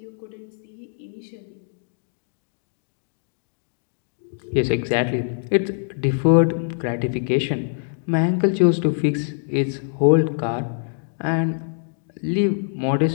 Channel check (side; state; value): right; silent; digital silence